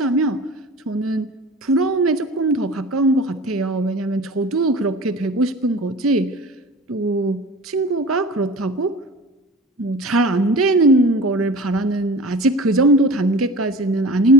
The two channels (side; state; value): both; normal; correlation 0.38